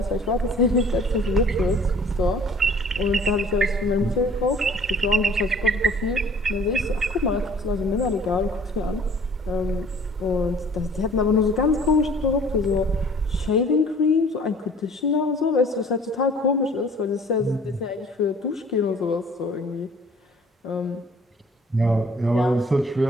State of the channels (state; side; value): normal; both; correlation 0.52